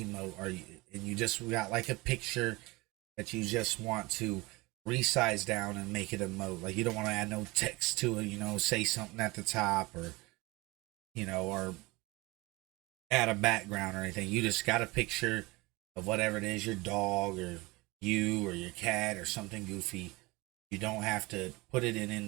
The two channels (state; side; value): quieter; left; 22.5 dB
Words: and you just got like a picture that you just want to resize down and make it emote, like you don't want to add no text to it, you know, say something at the top, or you know, or add a background or anything. You just got a picture of whatever it is, your dog or you or your cat or something goofy. You don't have to put it